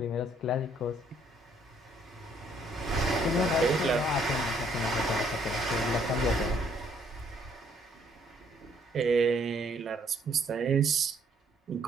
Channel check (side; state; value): both; normal; correlation 0.65